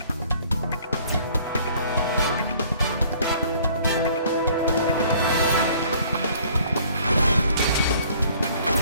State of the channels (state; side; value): inverted; both; correlation -0.56